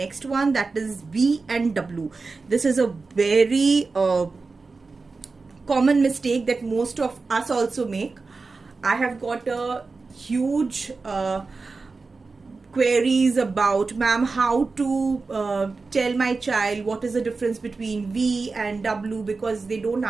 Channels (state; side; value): quieter; left; 4.1 dB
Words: one, that is V and W. This is a very common mistake that most of us also make. I have got a huge queries about, ma'am, how to tell my child what is the difference between V and W, because they don't